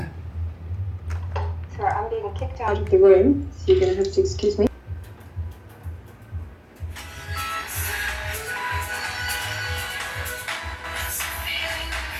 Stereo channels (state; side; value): identical; both; correlation 1.00